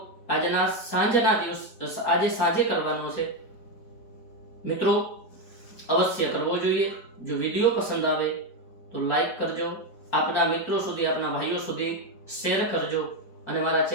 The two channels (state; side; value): late; right; 4.4 ms